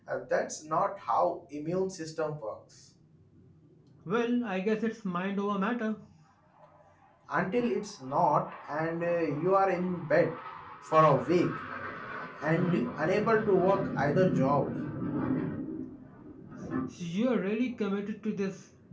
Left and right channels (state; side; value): identical; both; correlation 1.00